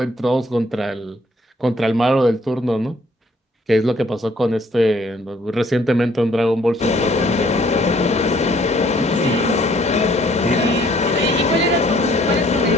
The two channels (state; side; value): normal; both; correlation 0.62